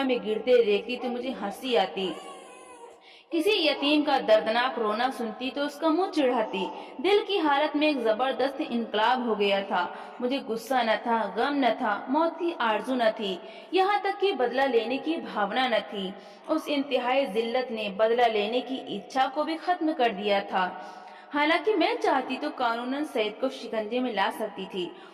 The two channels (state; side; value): identical; both; correlation 1.00